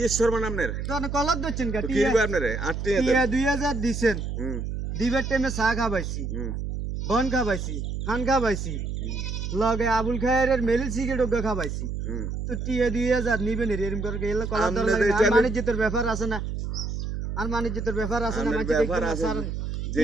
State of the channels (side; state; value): right; noise; hum, 4 dB below the sound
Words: শর্মান আমনের তো কলার দিচ্ছেন কা তো কি টিয়া দিবে আপনারে আর টিয়া দেন টিয়া 2000 দিছেন হুম দিবের টাইমে চা খাবাইছি হুম বন খাবাইছি খান খাবাইছি হুম, লগে আবুল খায়ের মেলি সিগারেট খাবাইছি হুম তো টিয়া 2000 নিবেন এরকম করে গেলে কলার আমনে দর লাগে এটা আর বাণিজ্যের ব্যাপার আছে না আর বাণিজ্যের ব্যাপার আছে না আমনের মাঝে ব্যাপার দেখবেন আছে স্যার টিয়া